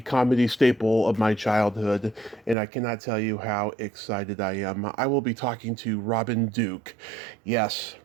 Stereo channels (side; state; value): left; drops out; at 2.6 s